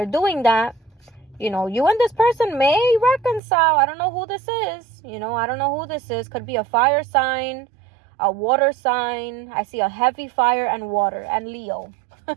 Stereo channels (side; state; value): left; drops out; at 3.4 s